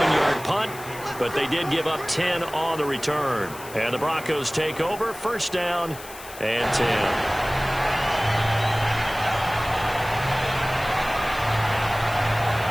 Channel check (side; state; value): left; noise; hiss, 16 dB below the sound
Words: punt, but they did give up 10 on the return. And the Broncos take over, 1st down and 10.